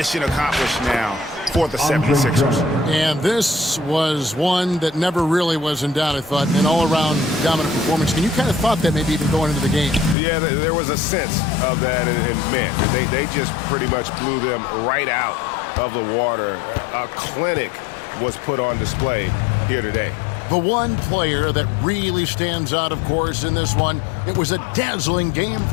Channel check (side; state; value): right; drops out; at 10.2 s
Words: accomplished now for the 76ers. And this was one that never really was in doubt, I thought, an all-around dominant performance. And you kind of thought that maybe even going into the game. Yeah, there was a sense of that, and man, they just pretty much blew them right out of the water. A clinic was put on display here today. The one player that really stands out, of course, in this one, it was a dazzling game